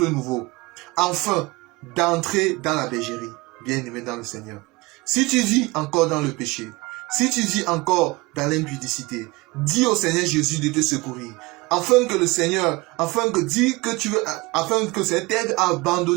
nouveau. Enfin, d'entrer dans la bergerie, bien-aimé dans le Seigneur. Si tu vis encore dans le péché, si tu vis encore dans l'impudicité, dis au Seigneur Jésus de te secourir, afin que le Seigneur, afin que ça t'aide à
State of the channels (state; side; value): quieter; left; 23.3 dB